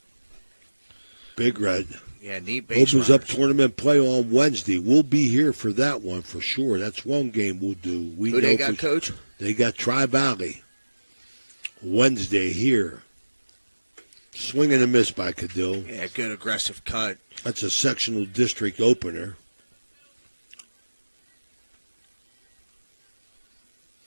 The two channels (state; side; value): inverted; both; correlation -1.00